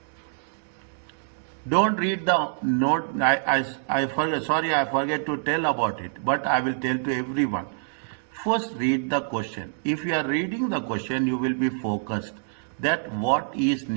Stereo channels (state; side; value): silent; left; digital silence